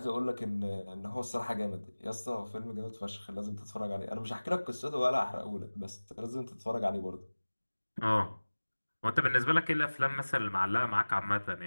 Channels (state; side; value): inverted; both; correlation -1.00